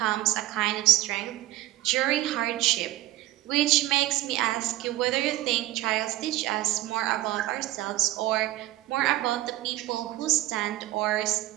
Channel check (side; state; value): left; quieter; 16.2 dB